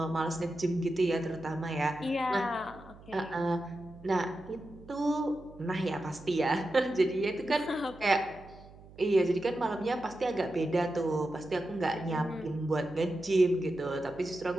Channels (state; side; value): noise; right; hum, 21 dB below the sound